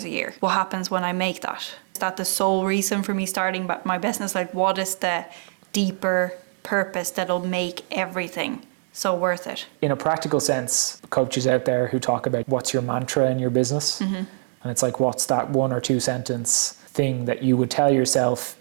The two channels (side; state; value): left; silent; 61 dB below the other